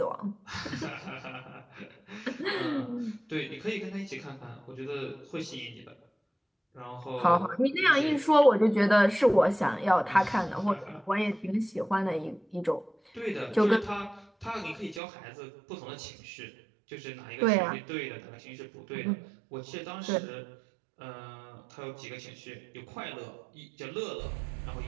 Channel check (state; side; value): drops out; left; at 15.0 s